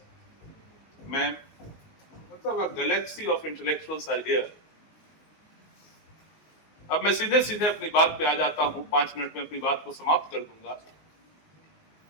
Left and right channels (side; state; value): right; late; 19 ms